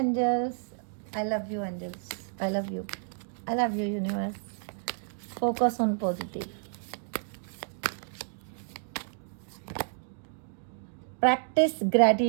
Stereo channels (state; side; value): silent; left; 57 dB below the other